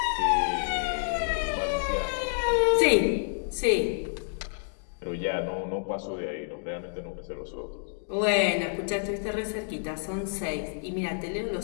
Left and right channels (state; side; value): silent; right; 59 dB below the other